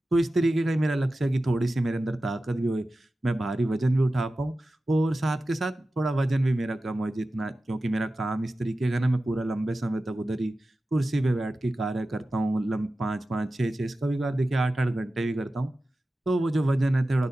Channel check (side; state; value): both; normal; correlation 0.94